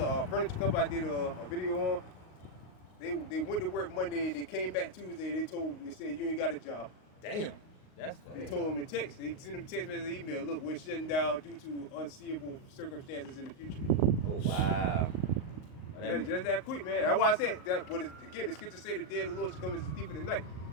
furniture company. I did a video on. They went to work Monday. They came back Tuesday. They said you ain't got a job. Damn. That's They fucked. told them a text. They sent them a text message, email. Look, we're shutting down due to unseeable circumstances in the future. Oh wow. Well, that mean- Just that quick, man. That's why I said that. But again, the scripture say the day of the Lord shall come as a thief in the night.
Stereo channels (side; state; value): right; late; 38 ms